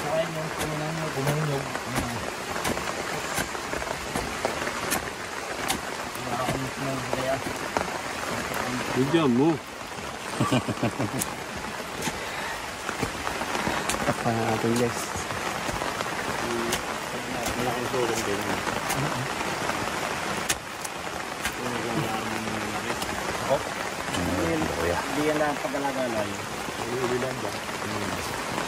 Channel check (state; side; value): identical; both; correlation 1.00